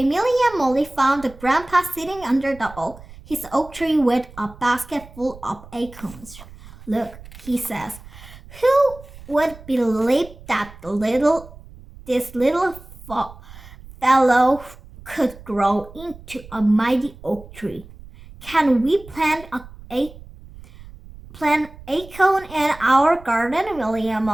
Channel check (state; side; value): noise; right; rumble, 19 dB below the sound